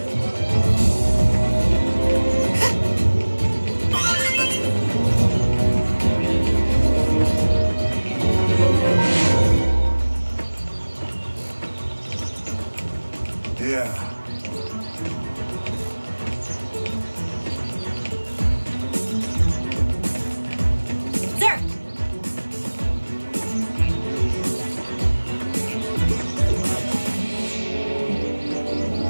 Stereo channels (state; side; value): inverted; both; correlation -1.00